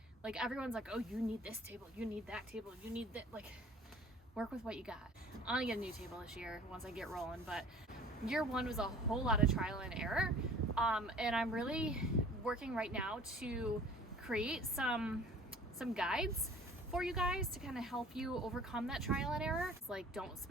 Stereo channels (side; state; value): both; normal; correlation 0.48